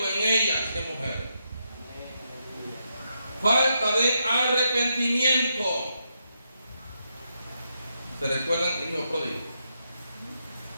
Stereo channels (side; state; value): both; inverted; correlation -0.82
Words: en ella, ¿qué mujer? Falta de arrepentimiento. ¿Se recuerdan el hijo pródigo?